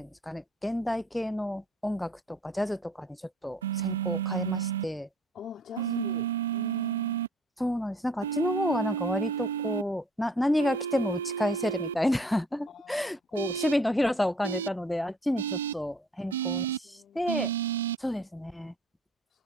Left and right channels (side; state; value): both; normal; correlation 0.56